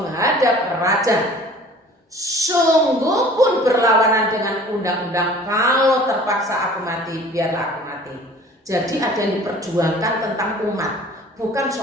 raja. Sungguh pun berlawanan dengan undang-undang. Kalau terpaksa aku mati, biarlah aku mati. Jadi ada yang diperjuangkan tentang umat. Bukan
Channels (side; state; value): both; normal; correlation 0.47